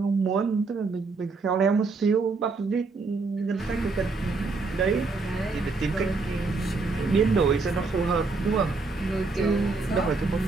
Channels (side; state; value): left; quieter; 4.0 dB